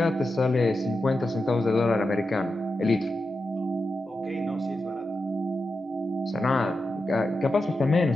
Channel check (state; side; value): normal; both; correlation 0.89